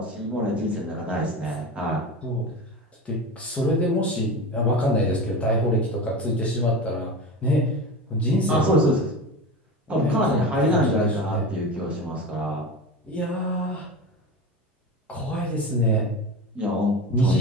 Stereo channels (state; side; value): normal; both; correlation 0.27